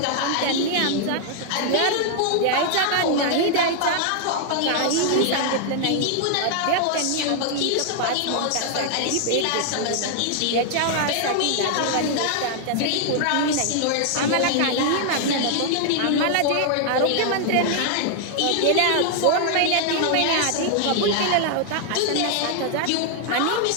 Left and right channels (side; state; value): both; different; correlation 0.00